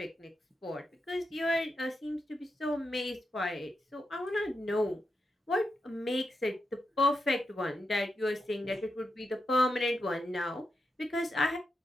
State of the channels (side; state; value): both; normal; correlation 0.86